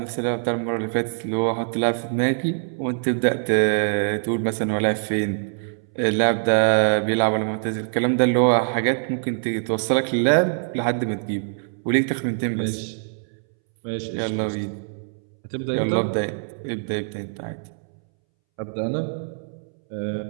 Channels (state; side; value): silent; left; 63 dB below the other